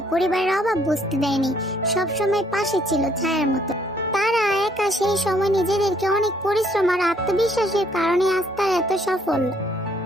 পরিবারের অভাব বুঝতে দেয়নি, সবসময় পাশে ছিল ছায়ার মতো। তারা একা সেই সময় নিজেদেরকে অনেক পরিশ্রম আর আত্মবিশ্বাসের কারণে আজ তারা এত সফল।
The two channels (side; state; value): both; normal; correlation 0.65